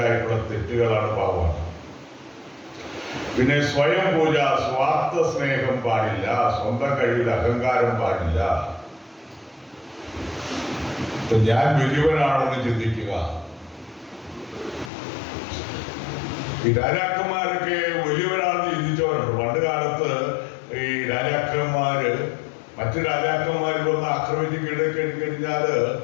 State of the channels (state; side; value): drops out; right; at 14.9 s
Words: തെറ്റുകളാണ്, പാവമാണ്. പിന്നെ സ്വയം പൂജ, സ്വാർത്ഥ സ്നേഹം പാടില്ല, സ്വന്തം കഴിവിൽ അഹങ്കാരം പാടില്ല. ഞാൻ വലിയവനാണെന്ന് ചിന്തിക്കുക. ഈ രാജാക്കന്മാരൊക്കെ വലിയവരാണെന്ന് ചിന്തിച്ചവരുണ്ട്. പണ്ട് കാലത്ത് ഈ രാജാക്കന്മാര് മറ്റു രാജാക്കന്മാർ വന്ന് ആക്രമിച്ച് കീഴടക്കിക്കഴിഞ്ഞാല്